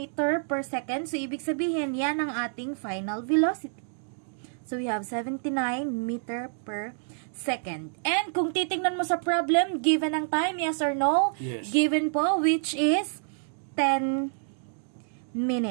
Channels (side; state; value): left; silent; digital silence